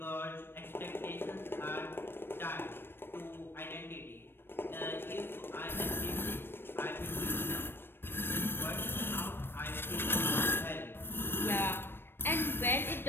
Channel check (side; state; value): right; late; 0.10 ms